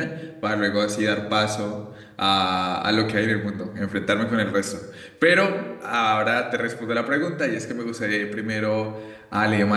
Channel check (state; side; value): identical; both; correlation 1.00